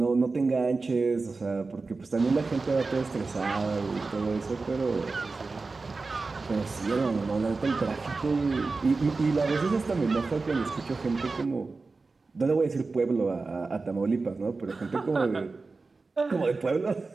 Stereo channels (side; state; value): left; quieter; 3.9 dB